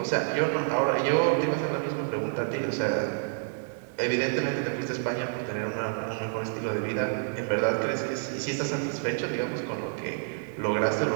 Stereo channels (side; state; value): left; silent; 59 dB below the other